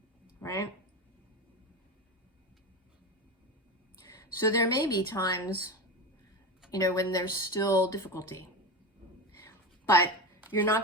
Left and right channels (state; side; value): normal; both; correlation 0.22